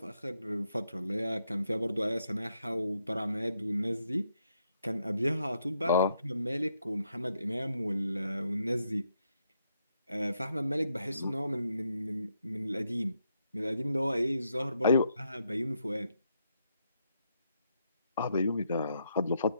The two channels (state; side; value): inverted; both; correlation -0.78